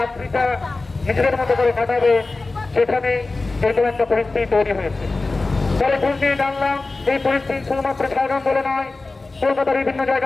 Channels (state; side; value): quieter; right; 3.4 dB